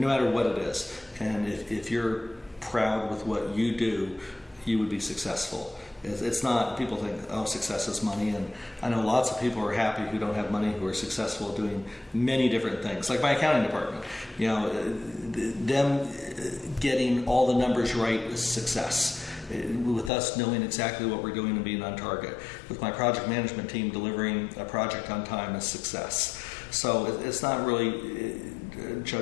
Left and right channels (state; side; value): drops out; right; at 20.1 s